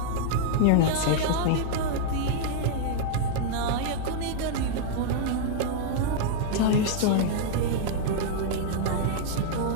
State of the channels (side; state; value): both; different; correlation -0.01